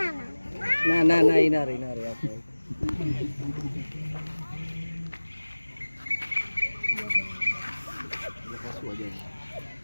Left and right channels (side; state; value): both; inverted; correlation -1.00